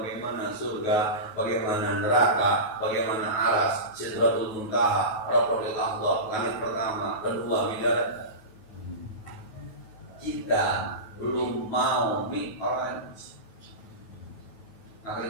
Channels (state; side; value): late; right; 9.3 ms